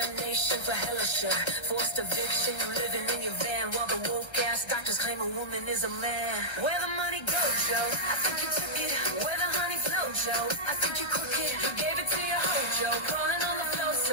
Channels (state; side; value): late; right; 1.3 ms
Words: for hella sure. Forced eviction, you living in your van while the woke ass doctors claim a woman is a man. Where the money go, Joe? I think you took it. Where the honey flow, Joe? I think you crooked. You gave it to your hoe, Joe.